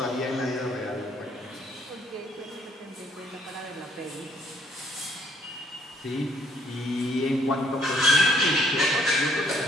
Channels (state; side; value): normal; both; correlation 0.64